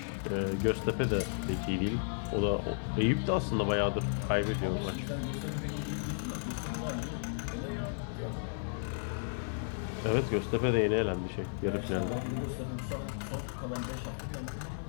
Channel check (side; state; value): right; silent; digital silence